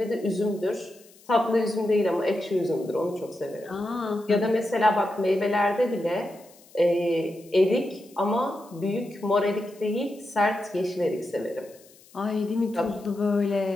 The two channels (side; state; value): left; noise; hiss, 26 dB below the sound